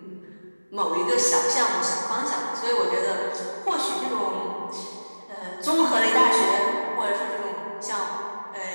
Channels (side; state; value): both; inverted; correlation -1.00